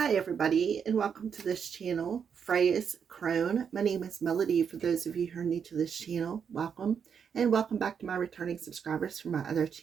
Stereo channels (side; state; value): left; quieter; 7.1 dB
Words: everybody, and welcome to this channel, Freya's Crone. My name is Melody. For those of you who are new to this channel, welcome. And welcome back to my returning subscribers from my other